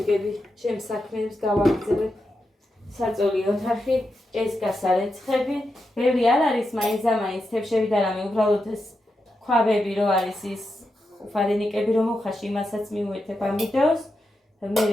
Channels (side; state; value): both; normal; correlation 0.87